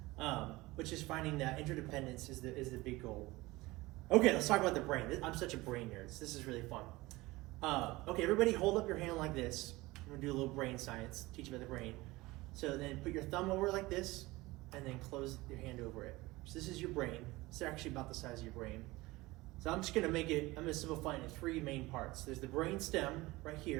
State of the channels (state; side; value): quieter; left; 20.5 dB